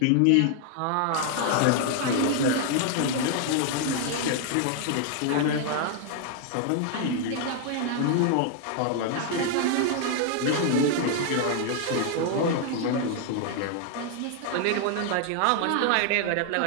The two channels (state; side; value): different; both; correlation 0.00